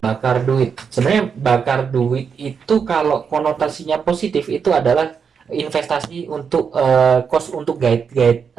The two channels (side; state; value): left; quieter; 6.4 dB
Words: bakar duit. Sebenarnya bakar duit itu kalau konotasinya positif itu adalah investasi untuk cost untuk guide